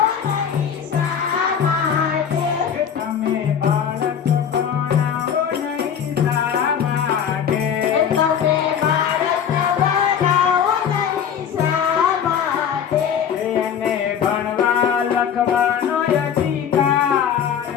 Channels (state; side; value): quieter; right; 8.1 dB